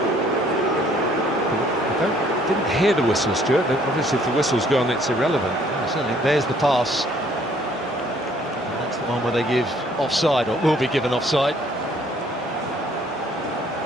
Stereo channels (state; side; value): normal; both; correlation 0.61